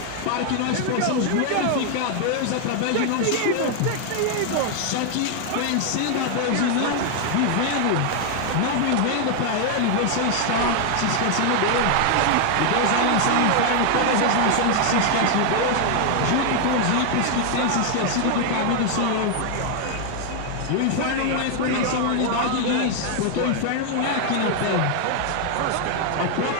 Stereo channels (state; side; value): different; both; correlation 0.00